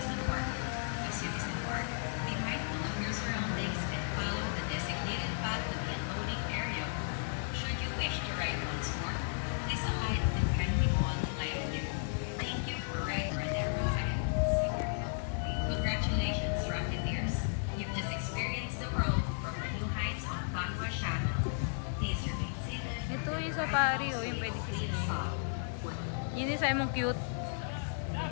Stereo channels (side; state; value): right; silent; digital silence